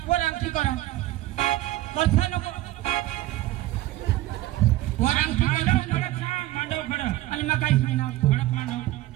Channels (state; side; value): quieter; left; 16.0 dB